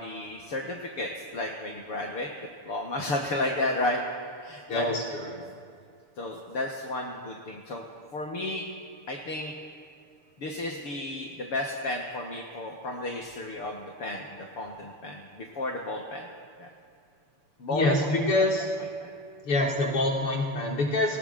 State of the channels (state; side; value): late; right; 6.9 ms